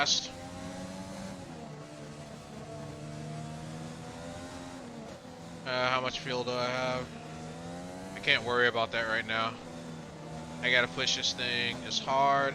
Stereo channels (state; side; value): identical; both; correlation 1.00